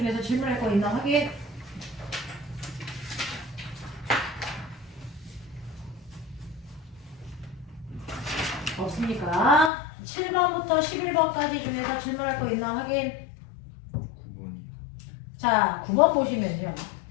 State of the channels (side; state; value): right; drops out; at 9.7 s